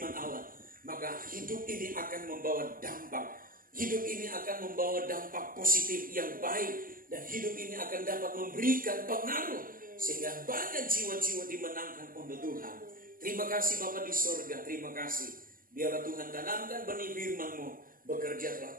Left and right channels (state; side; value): late; left; 0.41 ms